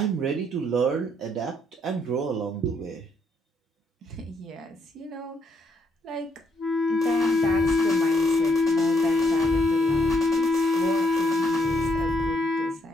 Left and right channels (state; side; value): normal; both; correlation 0.73